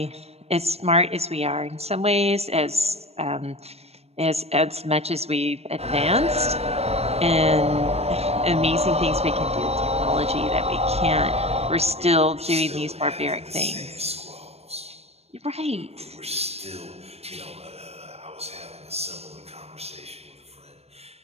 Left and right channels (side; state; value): left; late; 0.30 ms